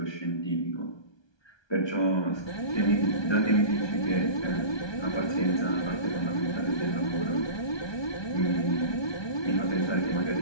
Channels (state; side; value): late; right; 1.2 ms